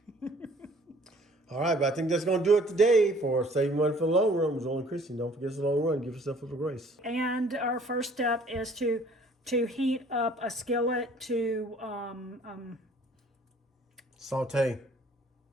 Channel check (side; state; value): both; normal; correlation 0.56